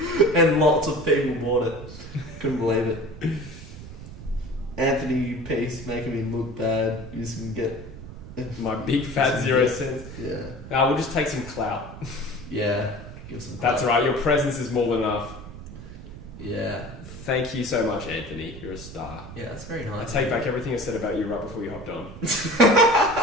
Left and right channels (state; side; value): noise; right; rumble, 13 dB below the sound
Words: and lots of people bought it. Couldn't believe it. Anthony Peace making me look bad. You just can get my big fat 0 cents. Yeah. We'll just take some clout. Yeah. Give some That's right. Your presence is more than enough. Yeah. Thank you so much, Anthony. You're a star. Yeah, that's very nice. I take back everything I said about you right before you hopped on.